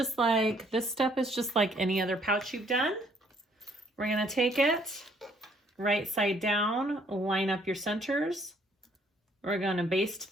like, this step is just like any other pouch you've done. We're going to take it right side down, line up your centers. We're going to baste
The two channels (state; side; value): normal; both; correlation 0.64